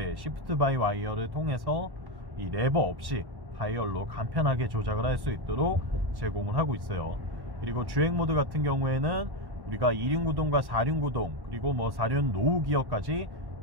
시프트 바이 와이어를 통해서 이 레버 없이 다이얼로 간편하게 조작을 할 수 있도록 제공을 하고 있어요. 그리고 주행 모드 같은 경우에는 우리가 2륜 구동과 4륜 구동, 그리고 뭐 4륜 노후 기어까지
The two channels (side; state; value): left; late; 1.1 ms